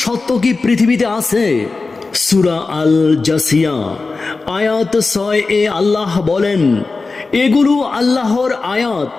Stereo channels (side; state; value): right; quieter; 3.9 dB